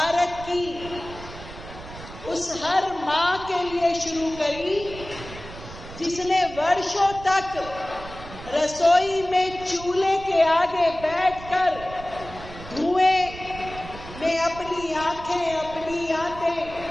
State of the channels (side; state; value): right; noise; rumble, 14 dB below the sound